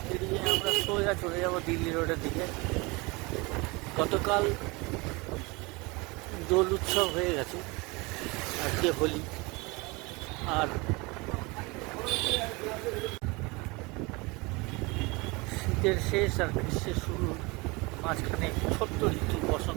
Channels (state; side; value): quieter; left; 25.8 dB